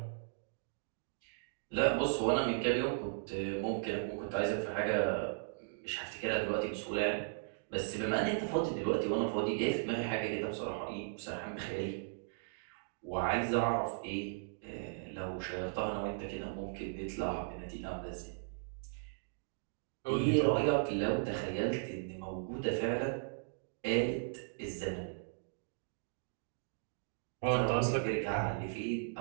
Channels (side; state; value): left; silent; digital silence